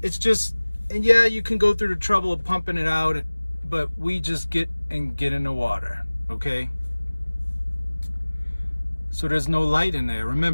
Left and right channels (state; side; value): inverted; both; correlation -1.00